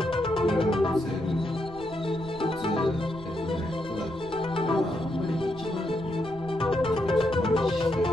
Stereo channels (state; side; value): noise; right; rumble, 18 dB below the sound